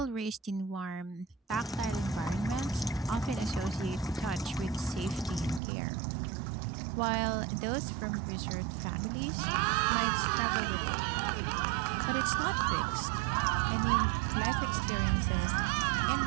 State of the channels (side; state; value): left; drops out; at 5.6 s